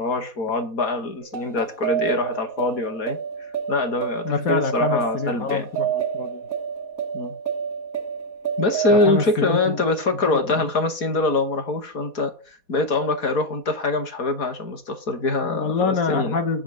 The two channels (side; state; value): right; late; 4.2 ms